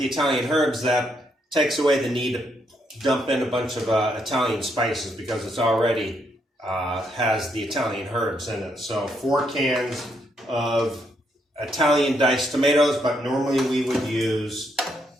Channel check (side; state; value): both; normal; correlation 0.76